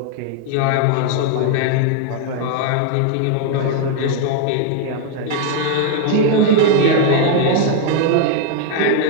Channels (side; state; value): both; different; correlation 0.00